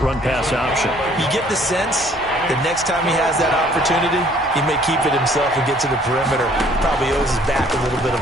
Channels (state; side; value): normal; both; correlation 0.59